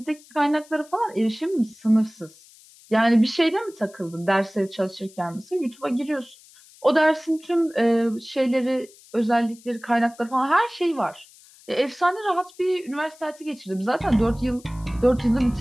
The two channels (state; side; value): noise; left; hiss, 25 dB below the sound